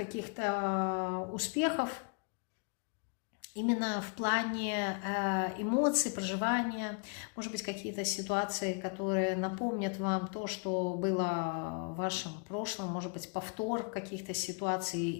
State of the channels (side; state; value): right; quieter; 37.6 dB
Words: успехов, именно в плане эмоций, проживания, может быть, какие-то ситуации, которые напомнят вам то, что было в вашем прошлом, может быть, повтор каких-то ситуаций